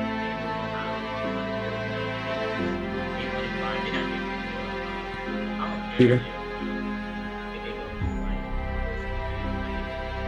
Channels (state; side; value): identical; both; correlation 1.00